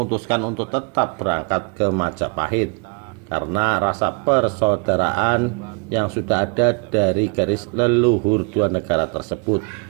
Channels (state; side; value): quieter; left; 34.5 dB